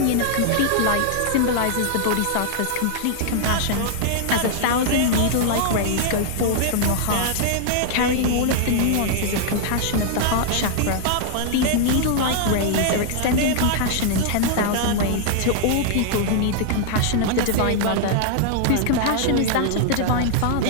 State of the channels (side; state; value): both; different; correlation -0.01